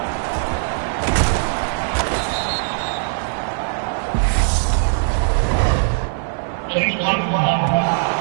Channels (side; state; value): left; silent; digital silence